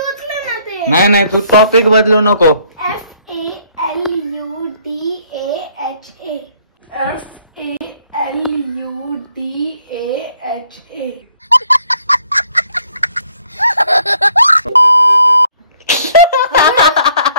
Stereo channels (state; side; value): inverted; both; correlation -0.65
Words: ना ते. नाही तू टॉपिक बदलू नको.